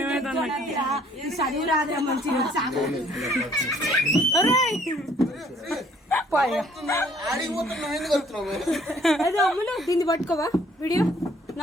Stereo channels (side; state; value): both; normal; correlation 0.60